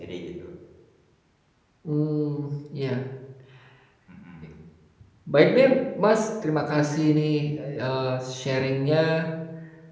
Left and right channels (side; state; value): both; identical; correlation 1.00